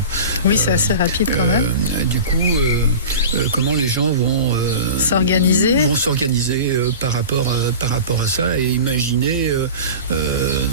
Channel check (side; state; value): both; inverted; correlation -0.34